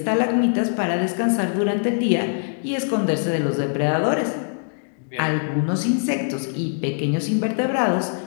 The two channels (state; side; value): silent; right; digital silence